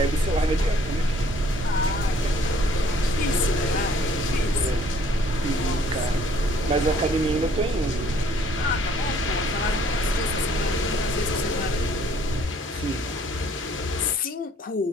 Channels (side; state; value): both; normal; correlation 0.60